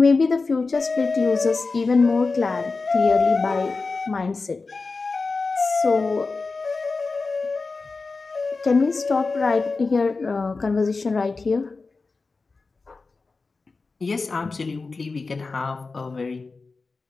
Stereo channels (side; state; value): right; quieter; 4.0 dB